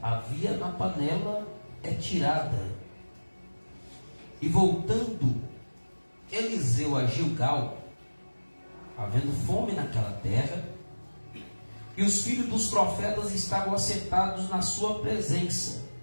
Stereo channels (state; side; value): inverted; both; correlation -1.00